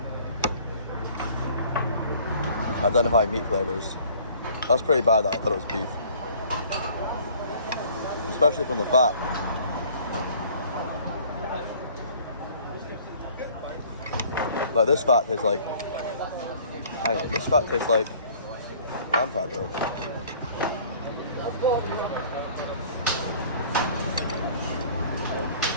identifying meat flavours. That's pretty bad that I thought it was beef. Especially from the fat. Like this fat tastes like, hang on, this fat tastes like, I man pad though.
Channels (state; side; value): inverted; both; correlation -0.53